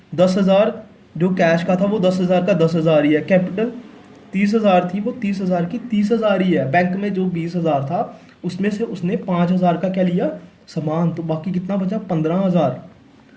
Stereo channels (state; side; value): identical; both; correlation 1.00